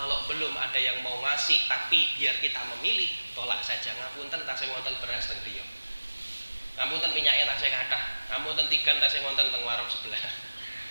belum ada yang mau ngasih tapi biar kita memilih, tolak saja. Ngapunten tasih wonten beras teng griya. Ngapunten minyaknya tasih kathah. Ngapunten tigan tasih wonten teng warung sebelah.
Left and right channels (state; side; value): inverted; both; correlation -1.00